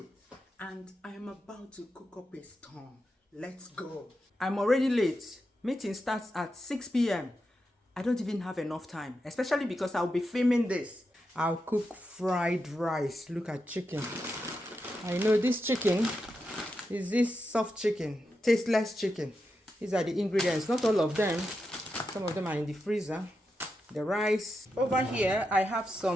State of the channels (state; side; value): normal; both; correlation 0.87